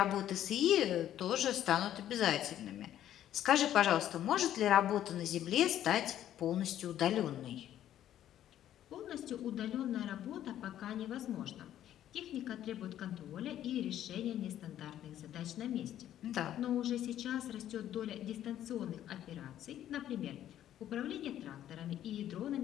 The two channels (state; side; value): quieter; right; 11.6 dB